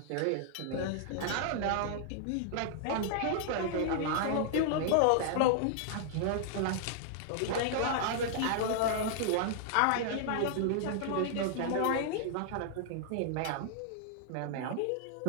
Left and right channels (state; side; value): different; both; correlation -0.01